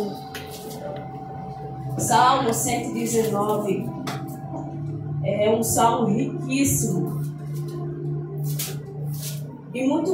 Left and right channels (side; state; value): both; identical; correlation 1.00